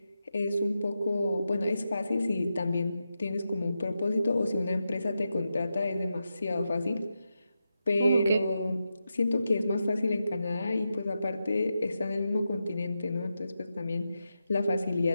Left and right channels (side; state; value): both; inverted; correlation -0.88